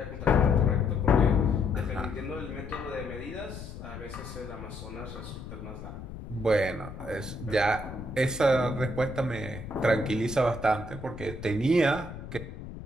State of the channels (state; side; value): noise; left; rumble, 12 dB below the sound